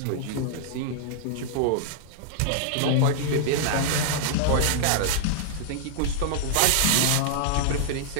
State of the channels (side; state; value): both; different; correlation -0.01